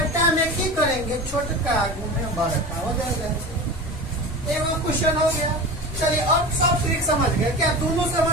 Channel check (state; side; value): normal; both; correlation 0.30